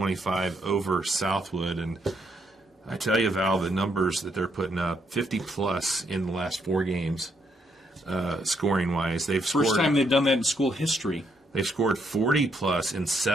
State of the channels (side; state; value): both; normal; correlation 0.75